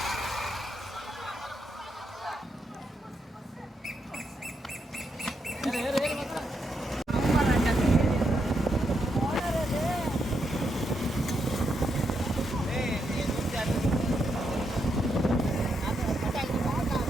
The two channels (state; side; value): normal; both; correlation 0.81